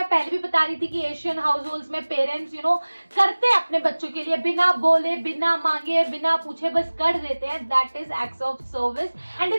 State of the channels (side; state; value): both; inverted; correlation -1.00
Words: पहले भी बता रही थी कि एशियन हाउस होल्ड्स में पेरेंट्स करते हैं अपने बच्चों के लिए, बिना बोले, बिना मांगे, बिना पूछे बस कर देते हैं, that is acts of service. And